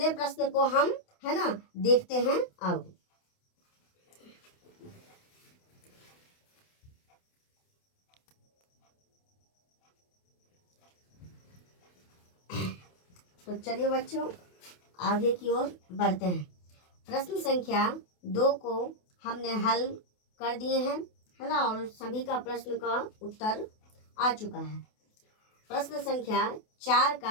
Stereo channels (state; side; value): late; right; 28 ms